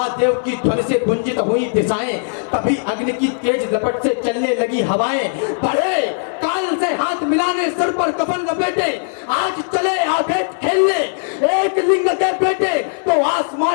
की ध्वनि से गुंजित हुई दिशाएं, तभी अग्नि की तेज लपट से चलने लगी हवाएं, बढ़े काल से हाथ मिलाने, सर पर कफन लपेटे, आज चले आगे खेलने, एक लिंग के बेटे, तो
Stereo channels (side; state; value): right; silent; digital silence